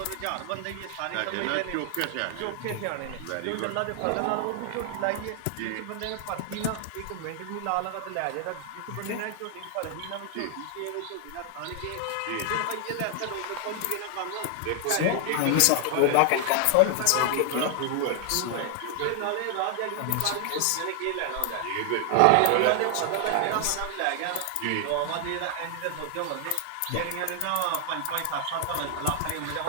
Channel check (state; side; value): different; both; correlation 0.00